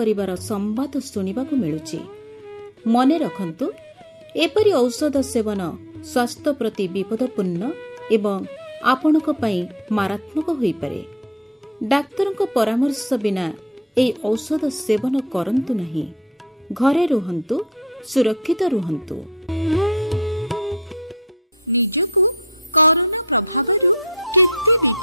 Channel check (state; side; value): normal; both; correlation 0.42